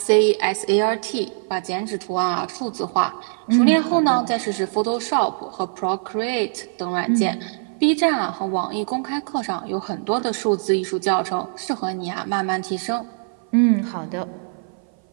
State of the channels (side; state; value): left; silent; 58 dB below the other